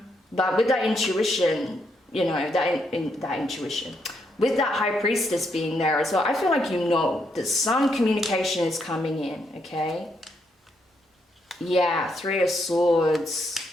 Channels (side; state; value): both; normal; correlation 0.77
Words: But with that intuition, you know, that intuition, with that High Priestess being there as well, I feel like you know that some communication is coming in, okay? Yeah, 3 of Swords